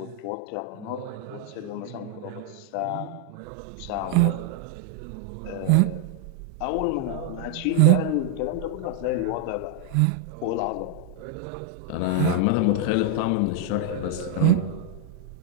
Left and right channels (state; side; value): different; both; correlation 0.00